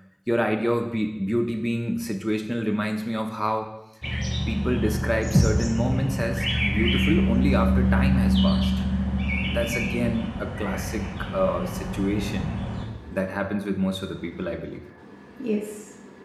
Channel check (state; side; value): identical; both; correlation 1.00